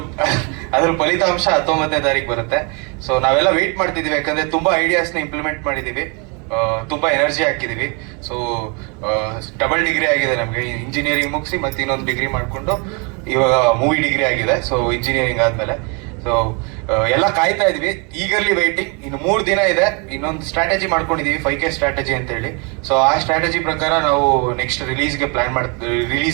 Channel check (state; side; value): quieter; left; 33.0 dB